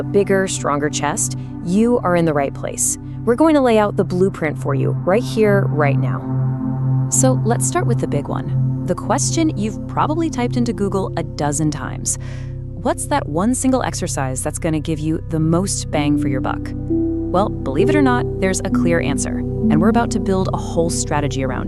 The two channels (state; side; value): identical; both; correlation 1.00